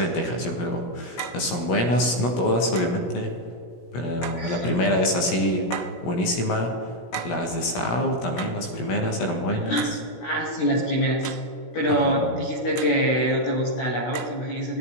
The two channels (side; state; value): right; late; 17 ms